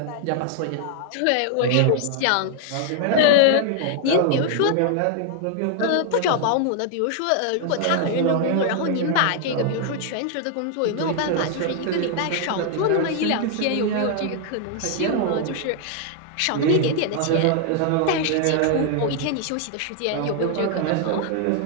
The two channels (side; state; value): both; different; correlation 0.00